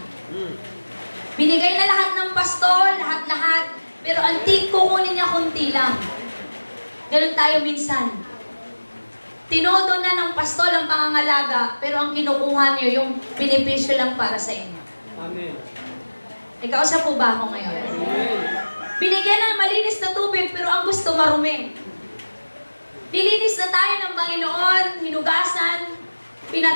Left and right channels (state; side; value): inverted; both; correlation -1.00